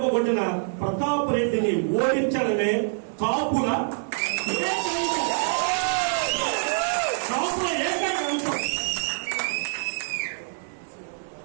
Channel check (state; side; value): silent; left; digital silence